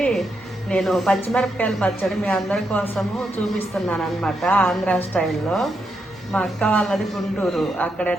నేను పచ్చిమిరపకాయల పచ్చడి మీ అందరి కోసము చూపిస్తున్నాను అనమాట. ఆంధ్ర స్టైల్లో. మా అక్క వాళ్ళది గుంటూరు. అక్కడ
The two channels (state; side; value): normal; both; correlation 0.82